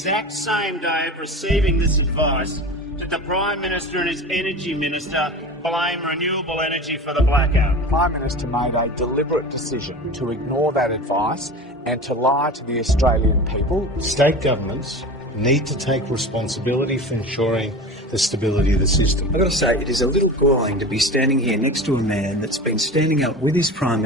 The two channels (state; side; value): normal; both; correlation 0.32